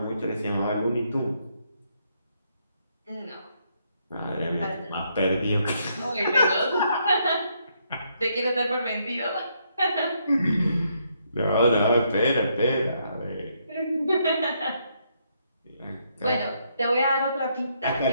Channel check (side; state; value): both; inverted; correlation -0.74